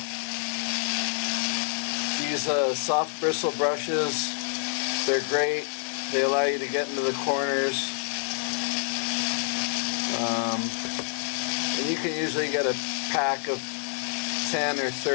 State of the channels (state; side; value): silent; right; digital silence